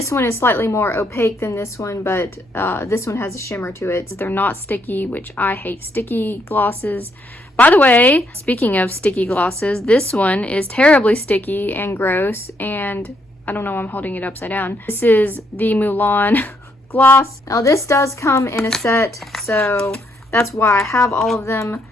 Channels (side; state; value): both; normal; correlation 0.74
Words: one is slightly more opaque than this one, but this one has a shimmer to it. They're not sticky, which I hate sticky glosses. By the way, speaking of sticky glosses, this one is terribly sticky and gross, and I don't know why I'm holding it upside down. This is the Mulan gloss. Now this does come in a set, so that's why I have all of them.